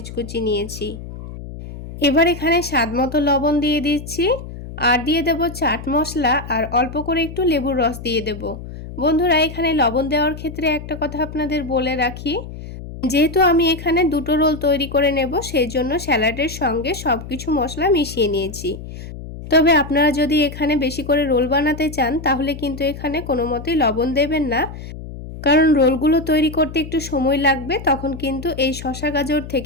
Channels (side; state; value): left; noise; hum, 12 dB below the sound